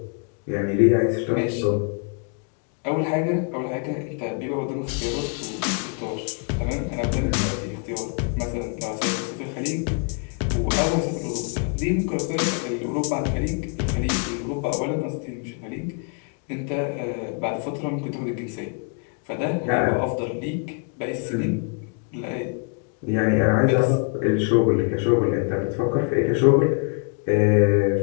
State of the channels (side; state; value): right; quieter; 39.1 dB